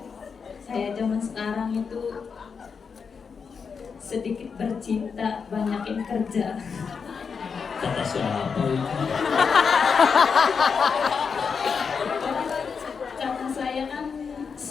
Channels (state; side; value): quieter; right; 5.8 dB